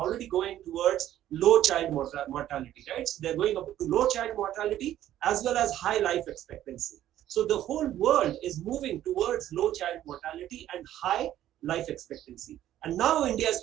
going towards low child mortality, right? So they're going up to low child mortality as well as high life expectancy. So the whole world is moving towards low child mortality and high life expectancy. And now India is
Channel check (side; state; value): left; quieter; 12.4 dB